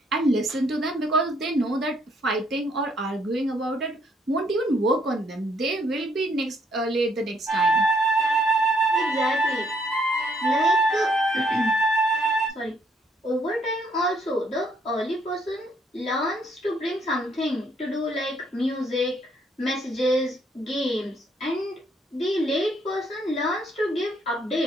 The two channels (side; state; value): both; normal; correlation 0.69